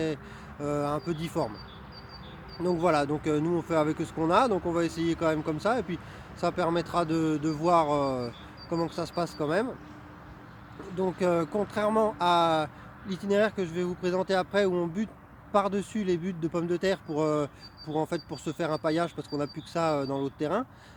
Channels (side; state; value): both; identical; correlation 1.00